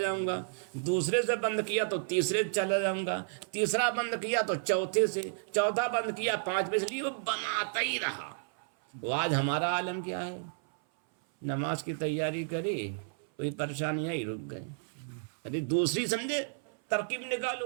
گا، دوسرے سے بند کیا تو تیسرے سے چلا جاؤں گا، تیسرا بند کیا تو چوتھے سے، چوتھا بند کیا پانچویں سے، لیے وہ بناتا ہی رہا۔ وہ آج ہمارا عالم کیا ہے؟ نماز کی تیاری کری، کوئی پریشانی آئی، رک گئے، ارے دوسری سمجھے ترکیب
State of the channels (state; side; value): silent; left; 57 dB below the other